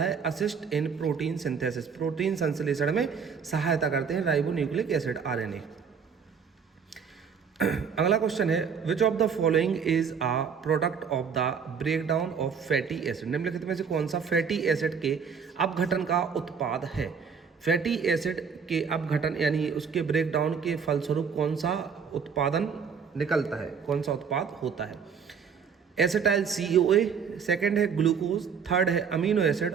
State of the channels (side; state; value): left; quieter; 6.4 dB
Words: assist in protein synthesis. Protein संश्लेषण में सहायता करते हैं राइबोन्यूक्लिक एसिड RNA। अगला क्वेश्चन है, which of the following is a product of the breakdown of fatty acid. निम्नलिखित में से कौन सा फैटी एसिड के अपघटन का उत्पाद है। फैटी एसिड के अपघटन यानी उसके ब्रेकडाउन के फलस्वरूप कौन सा उत्पादन निकलता है, कौन सा उत्पाद होता है। एसिटाइल CoA, सेकेंड है ग्लूकोज, थर्ड है अमीनो एसिड